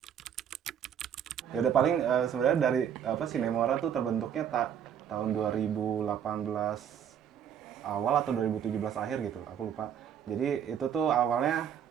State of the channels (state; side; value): quieter; left; 8.8 dB